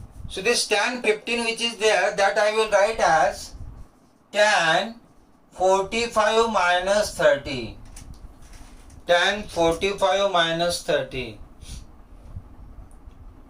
so this tan 15 which is there, that I will write as tan 45 minus 30. Tan 45 minus 30.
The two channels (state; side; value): identical; both; correlation 1.00